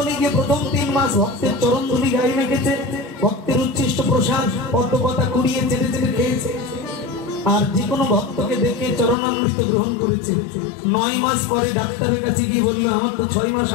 গিয়ে প্রথম 3 মাস ভক্তের চরণ ধুলি গায়ে মেখেছে, ভক্তের উচ্ছিষ্ট প্রসাদ পদ্মপাতা কুড়িয়ে চেটে চেটে খেয়েছে। আর যে কোনো ভক্তকে দেখে চরণামৃত গ্রহণ করেছে। 9 মাস পরে ডাক্তারের কাছে গিয়ে বললো, আমার তো 6 মাস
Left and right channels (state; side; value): drops out; right; at 9.2 s